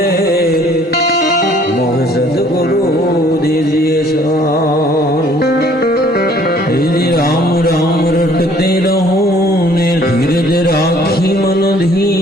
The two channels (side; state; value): both; normal; correlation 0.58